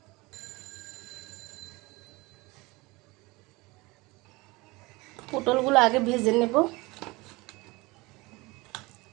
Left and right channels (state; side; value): quieter; left; 23.2 dB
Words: পটলগুলো আগে ভেজে নেব,